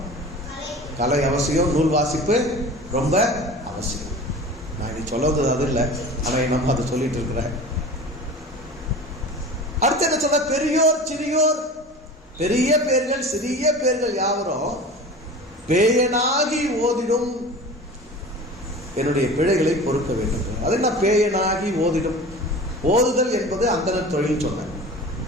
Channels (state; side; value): normal; both; correlation 0.36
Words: கலை அவசியம், நூல் வாசிப்பு ரொம்ப அவசியம். நான் நீ சொல்றது அது இல்லை, ஆனால் நம்ம அதை சொல்லிட்டு இருக்கிறேன். அடுத்து என்ன சொல்ல? பெரியோர் சிறியோர், பெரிய பேர்கள் சிறிய பேர்கள் யாவரும் பேயனாகி ஓதிடும் என்னுடைய பிழைகளை பொறுக்க வேண்டும். அது என்ன பேயனாகி ஓதிடும்? ஓதுதல் என்பது அந்தனர் தொழில் சொன்னேன்.